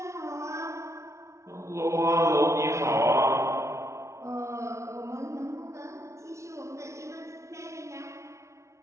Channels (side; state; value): left; late; 0.14 ms